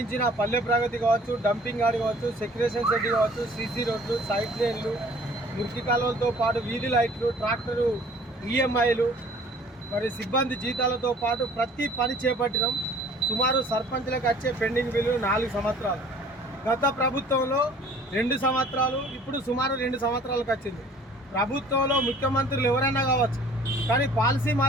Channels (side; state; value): both; normal; correlation 0.52